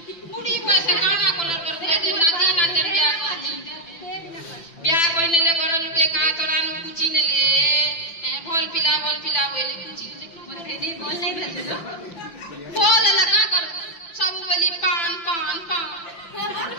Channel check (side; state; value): right; late; 6.0 ms